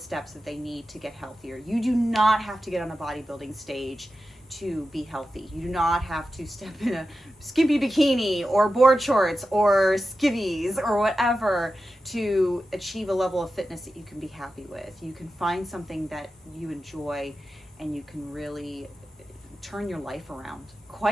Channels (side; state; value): both; normal; correlation 0.92